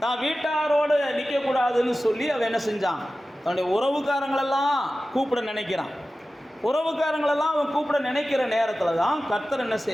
தான் வீட்டாரோடு நிற்கக்கூடாதுன்னு சொல்லி அவன் என்ன செஞ்சான்? தன்னுடைய உறவுக்காரங்களெல்லாம் கூப்பிட நினைக்கிறான். உறவுக்காரங்களெல்லாம் அவன் கூப்பிட நினைக்கிற நேரத்தில் தான் கர்த்தர் என்ன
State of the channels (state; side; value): normal; both; correlation 0.95